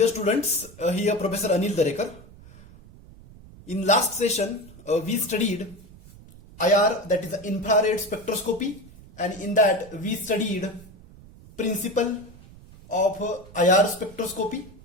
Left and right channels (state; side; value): noise; right; rumble, 21 dB below the sound